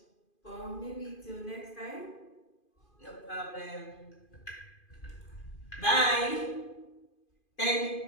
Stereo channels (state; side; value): late; right; 2.5 ms